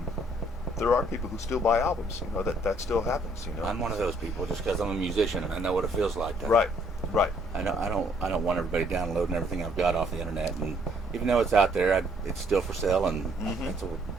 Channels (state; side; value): normal; both; correlation 0.64